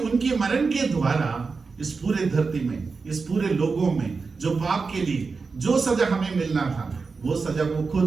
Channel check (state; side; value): quieter; left; 4.6 dB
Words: उनके मरण के द्वारा इस पूरे धरती में, इस पूरे लोगों में जो पाप के लिए जो सजा हमें मिलना था वो सजा वो